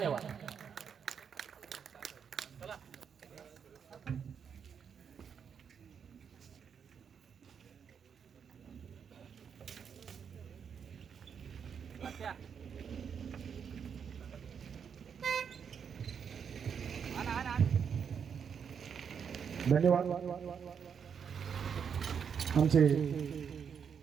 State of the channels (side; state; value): left; quieter; 7.1 dB